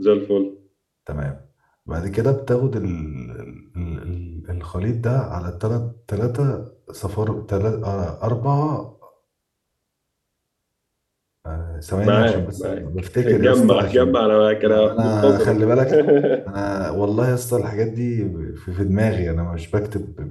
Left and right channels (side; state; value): both; identical; correlation 1.00